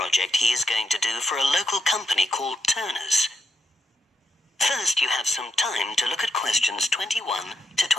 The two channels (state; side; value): normal; both; correlation 0.81